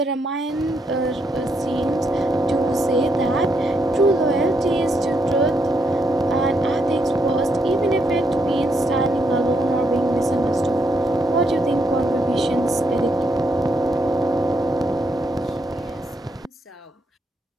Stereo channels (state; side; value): normal; both; correlation 0.77